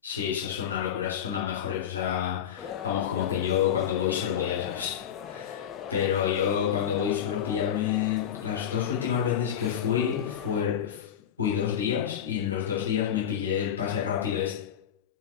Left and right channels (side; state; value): right; quieter; 9.1 dB